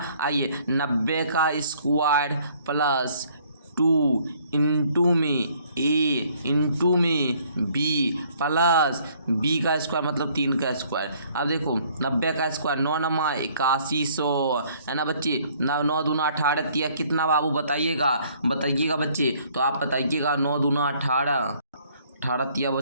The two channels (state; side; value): inverted; both; correlation -0.61